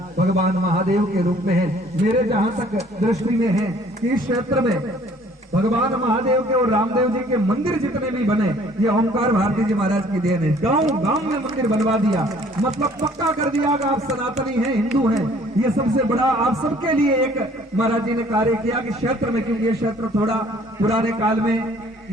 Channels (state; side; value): normal; both; correlation 0.57